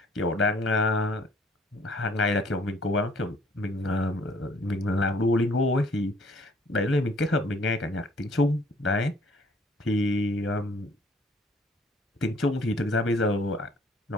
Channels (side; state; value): both; normal; correlation 0.59